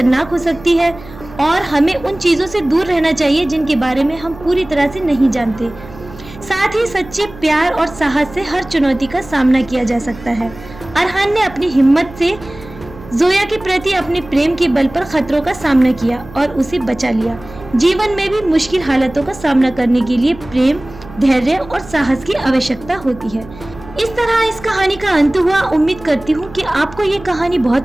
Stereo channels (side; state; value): right; noise; hum, 18 dB below the sound